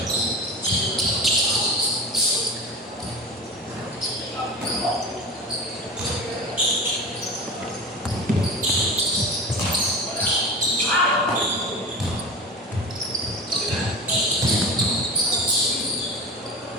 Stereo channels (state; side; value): normal; both; correlation 0.31